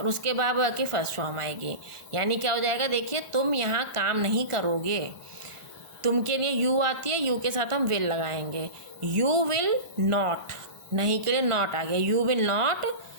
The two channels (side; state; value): left; late; 1.4 ms